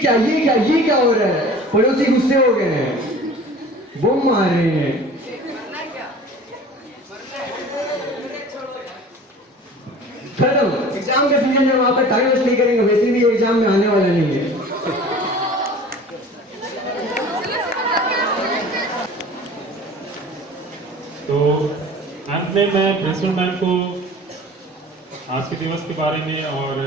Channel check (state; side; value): normal; both; correlation 0.43